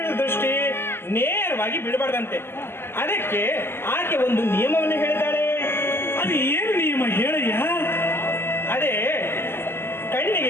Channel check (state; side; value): late; right; 0.11 ms